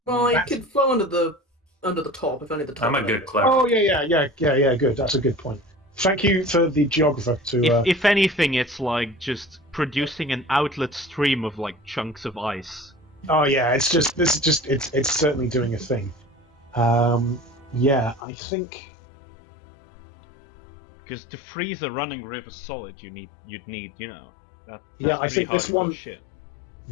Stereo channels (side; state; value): right; drops out; at 18.2 s